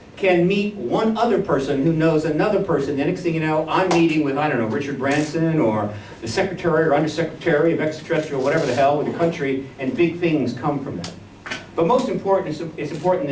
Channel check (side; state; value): both; identical; correlation 1.00